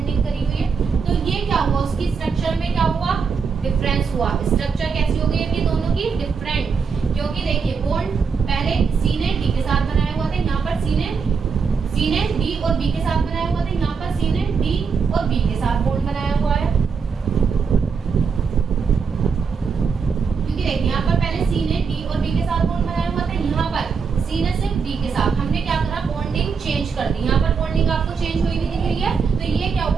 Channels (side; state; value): left; quieter; 5.6 dB